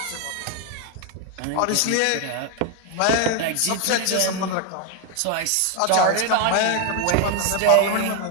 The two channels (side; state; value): both; different; correlation 0.01